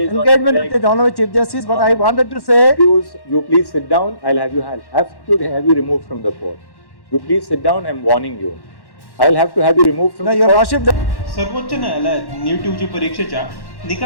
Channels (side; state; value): right; late; 1.1 ms